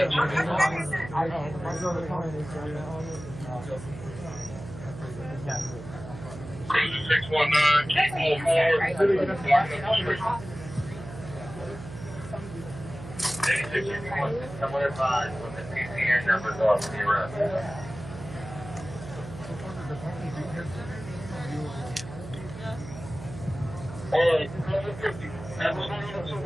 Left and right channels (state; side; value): noise; right; hum, 12 dB below the sound